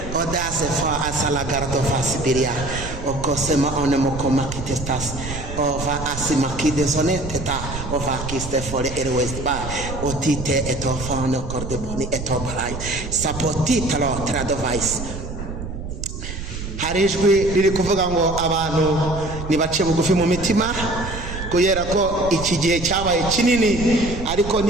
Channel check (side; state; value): right; noise; rumble, 8 dB below the sound